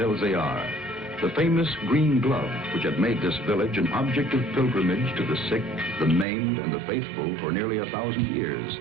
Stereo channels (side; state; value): left; drops out; at 6.2 s